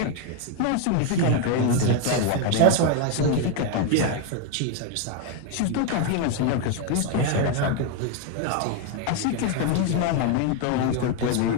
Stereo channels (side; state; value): both; different; correlation 0.01